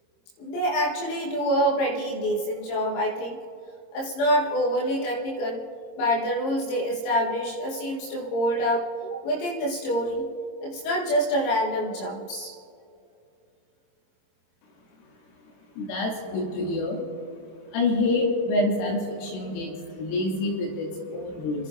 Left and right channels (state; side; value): late; right; 26 ms